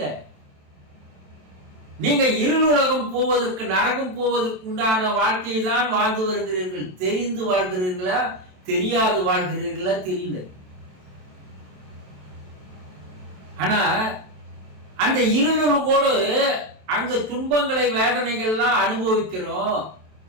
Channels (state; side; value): late; left; 27 ms